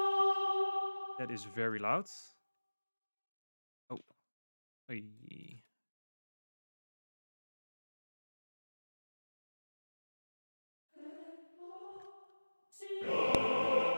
That is very loud. Oh. Hey.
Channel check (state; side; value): inverted; both; correlation -1.00